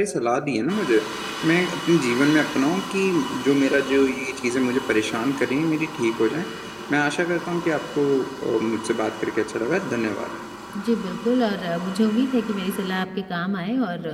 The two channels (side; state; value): both; identical; correlation 1.00